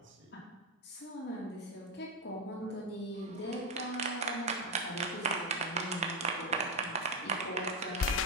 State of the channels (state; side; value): normal; both; correlation 0.07